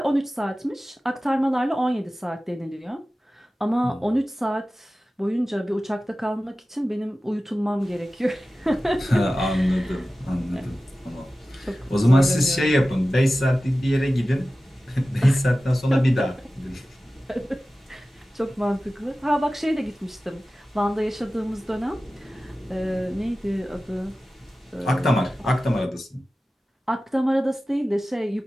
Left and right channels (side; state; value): both; normal; correlation 0.95